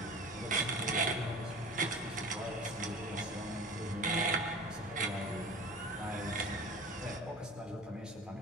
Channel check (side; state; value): both; normal; correlation 0.38